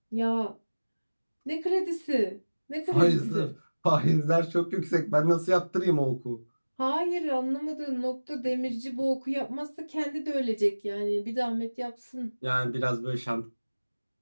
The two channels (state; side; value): inverted; both; correlation -1.00